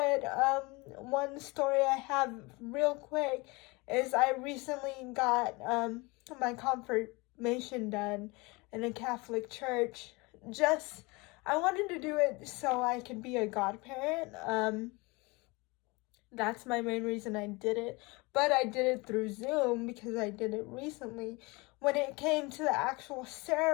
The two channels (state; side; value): quieter; right; 25.5 dB